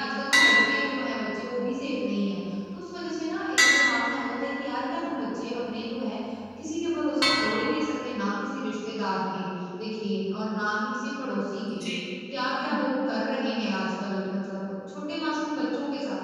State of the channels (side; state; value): both; identical; correlation 1.00